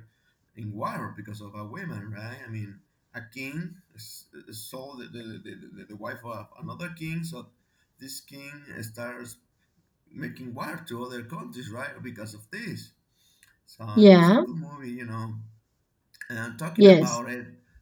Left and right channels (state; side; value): identical; both; correlation 1.00